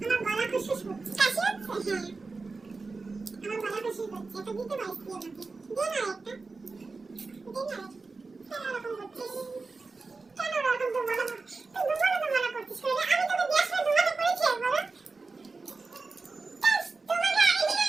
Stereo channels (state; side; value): quieter; left; 4.0 dB